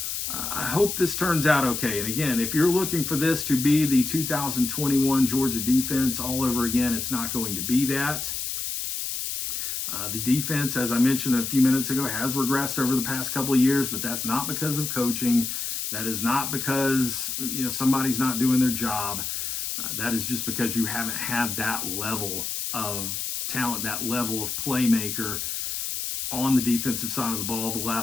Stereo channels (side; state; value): left; noise; hiss, 3 dB below the sound